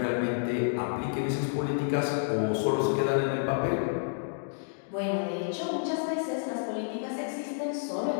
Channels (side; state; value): right; silent; digital silence